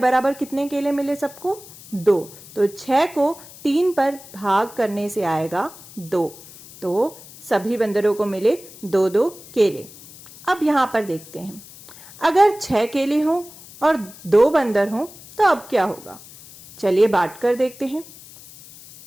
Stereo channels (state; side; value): noise; left; hiss, 19 dB below the sound